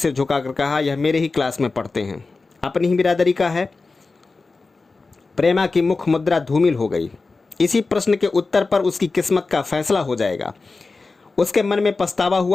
झुकाकर कहा, यह मेरे ही क्लास में पढ़ते हैं, अपनी ही बिरादरी का है। प्रेमा की मुख मुद्रा धूमिल हो गई। इसी प्रश्न के उत्तर पर उसकी किस्मत का फैसला हो जाएगा। उसके मन में पछतावा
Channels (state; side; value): quieter; right; 3.9 dB